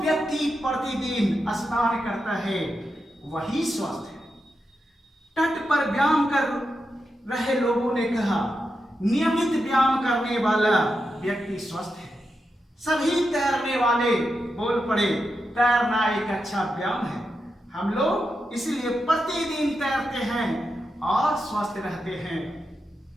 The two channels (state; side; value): normal; both; correlation 0.87